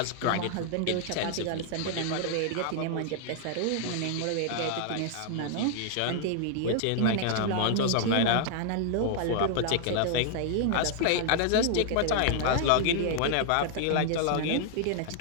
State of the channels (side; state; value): both; different; correlation 0.00